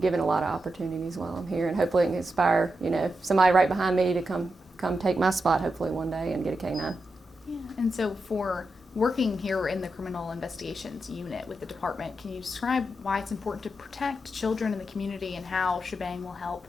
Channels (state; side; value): normal; both; correlation 0.87